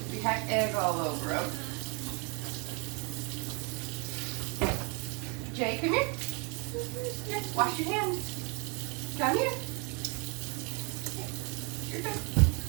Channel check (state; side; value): quieter; left; 32.8 dB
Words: We had egg all over them. Jay, come here. Here, wash your hands. Come here. You're good.